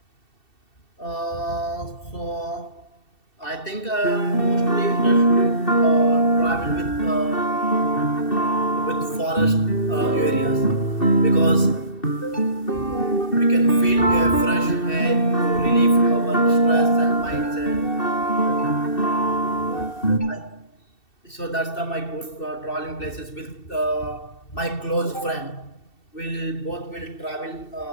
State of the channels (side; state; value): right; late; 2.7 ms